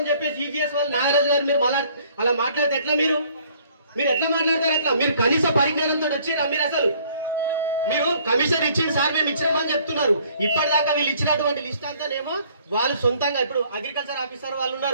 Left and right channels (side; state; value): both; inverted; correlation -0.59